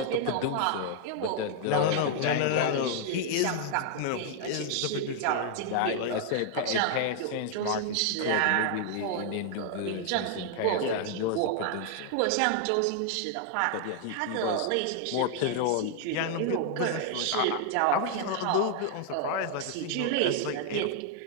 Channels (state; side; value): different; both; correlation 0.00